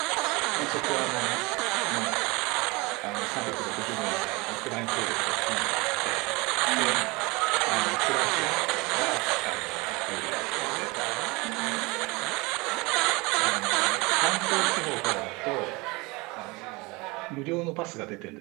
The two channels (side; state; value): left; quieter; 25.1 dB